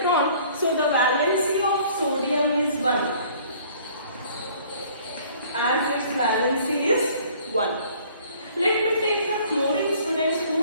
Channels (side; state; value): both; inverted; correlation -0.55